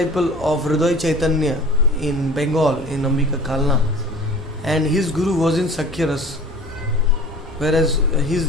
of Hriday Chaitanya in Bengal, in Ambika Kalna, and his guru was in Sakhya-ras, whereas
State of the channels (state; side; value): normal; both; correlation 0.43